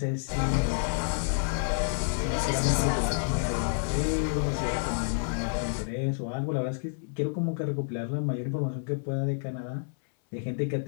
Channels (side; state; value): right; silent; 58 dB below the other